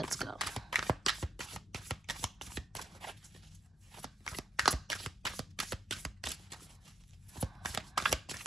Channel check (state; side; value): normal; both; correlation 0.76